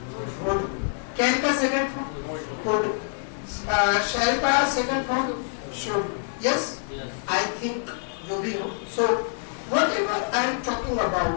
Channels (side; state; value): right; silent; 61 dB below the other